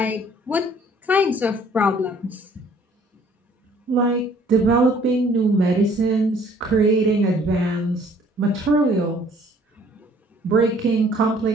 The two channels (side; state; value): both; normal; correlation 0.58